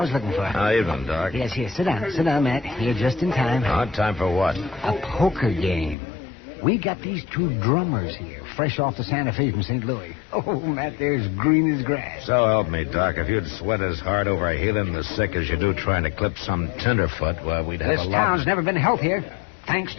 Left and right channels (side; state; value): right; drops out; at 6.0 s